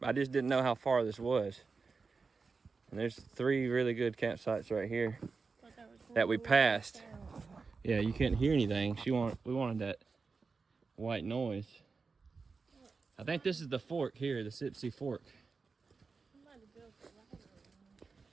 I just didn't know how far this was. And there's 3 really good campsites right here that we passed. Yeah, you couldn't hear anything. We wanted that white noise. I think this is the fork here, the Sipsey Fork.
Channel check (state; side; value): quieter; left; 4.6 dB